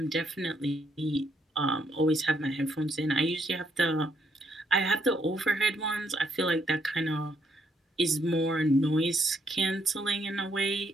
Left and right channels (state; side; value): normal; both; correlation 0.73